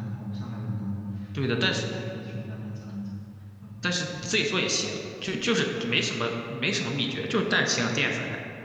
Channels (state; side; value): identical; both; correlation 1.00